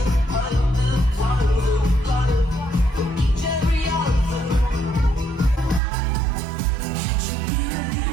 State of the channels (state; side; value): drops out; left; at 5.8 s